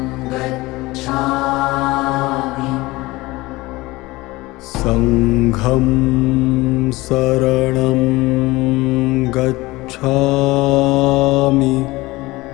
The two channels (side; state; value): right; quieter; 20.7 dB